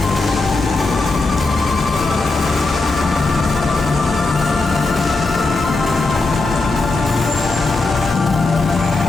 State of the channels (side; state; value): right; quieter; 3.4 dB